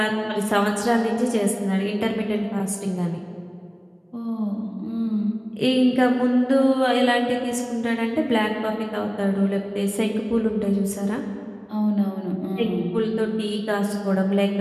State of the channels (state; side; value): identical; both; correlation 1.00